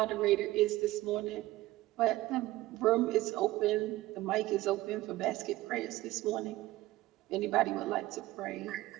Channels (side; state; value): left; quieter; 17.4 dB